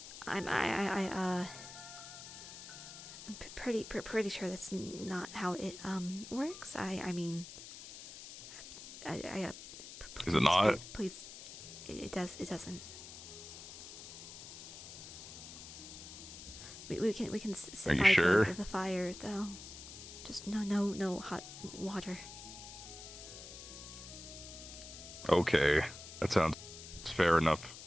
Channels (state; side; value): noise; left; hiss, 13 dB below the sound